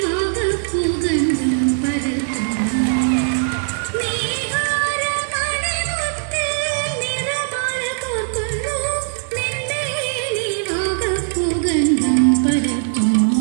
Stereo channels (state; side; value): silent; left; digital silence